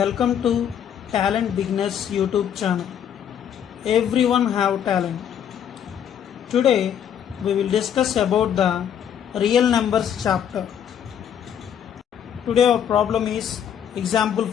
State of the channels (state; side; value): quieter; right; 9.0 dB